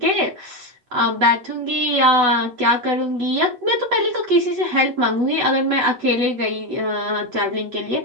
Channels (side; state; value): left; late; 8.1 ms